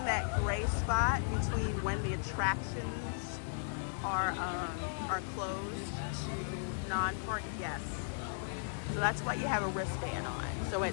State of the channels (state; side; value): silent; right; digital silence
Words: that gray spot between when the attractions are closed to non-party guests. So that's why you have a wristband on. So at